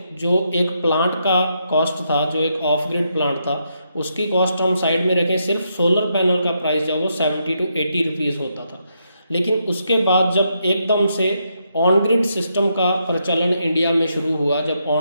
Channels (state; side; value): inverted; both; correlation -0.80